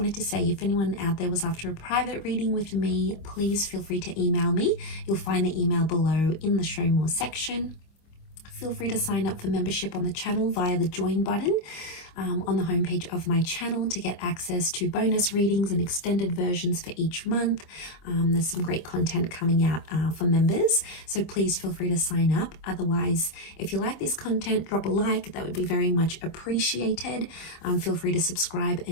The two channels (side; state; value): right; late; 25 ms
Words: to say, if anyone out there was after a private reading with me, please feel free to email me. You'll find the email below in the Show More section. Feel free to sign up for membership on the channel via the join button on the homepage of my channel to get access to bonus readings and extended versions for each month. There's some great content coming out for members, so please feel free to sign up. Otherwise, if you like this content, drop a like. That would be very much appreciated. Feel free to subscribe